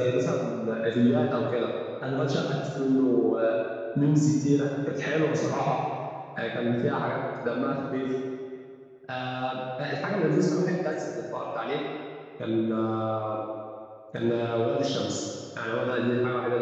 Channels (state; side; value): identical; both; correlation 1.00